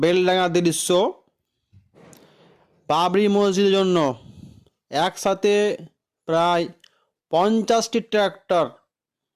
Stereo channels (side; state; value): both; identical; correlation 1.00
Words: দৃশ্য। বাবরি মসজিদের জন্য একসাথে প্রায় 50টি